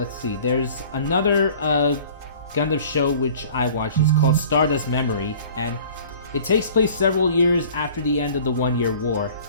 see, there's another Gundam show which I watched. It's called Stardust Memory, and it takes place several years after the end of the One-Year War.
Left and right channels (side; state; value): both; inverted; correlation -0.47